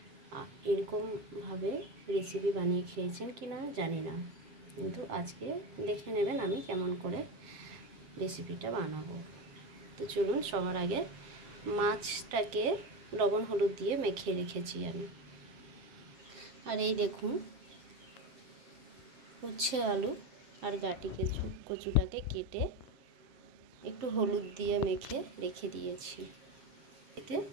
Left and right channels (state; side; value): late; left; 7.5 ms